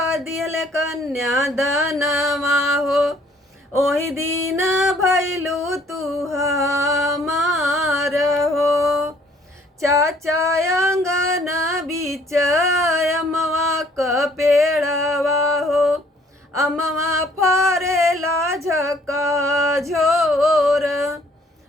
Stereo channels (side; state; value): both; normal; correlation 0.60